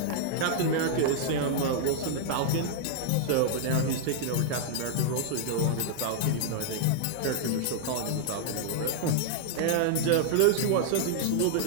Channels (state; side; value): different; both; correlation -0.01